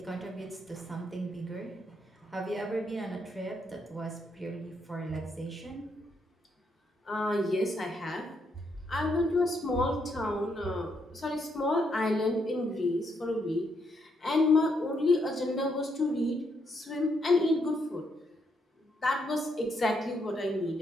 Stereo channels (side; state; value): both; normal; correlation 0.76